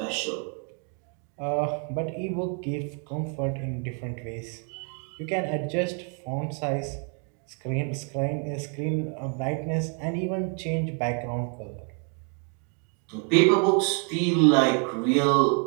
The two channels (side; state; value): left; quieter; 38.2 dB